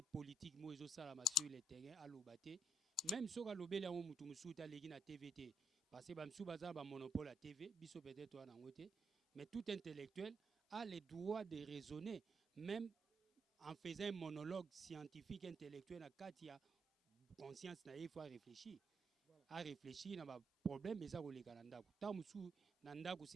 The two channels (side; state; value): both; normal; correlation 0.78